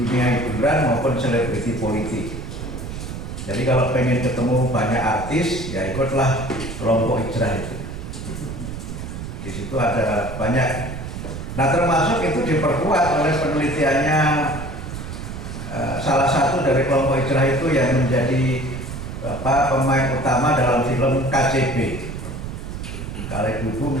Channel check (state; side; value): noise; right; rumble, 8 dB below the sound